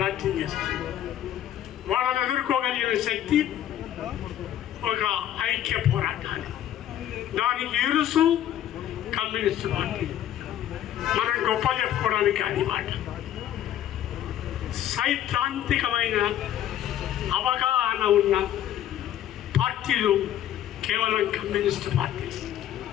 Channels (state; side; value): quieter; right; 11.5 dB